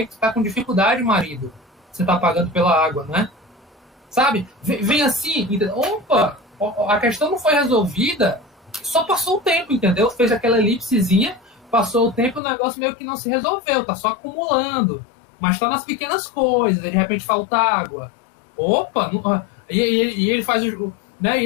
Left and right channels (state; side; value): drops out; right; at 12.4 s